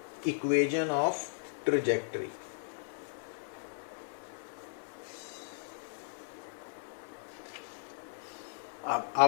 इक्वेशन ऑफ ट्रेजेक्टरी।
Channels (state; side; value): silent; right; 54 dB below the other